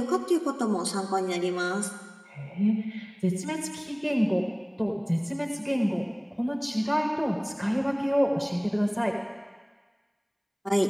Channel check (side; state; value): both; identical; correlation 1.00